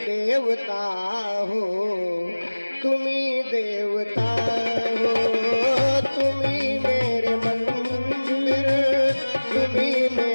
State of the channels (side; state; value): both; inverted; correlation -1.00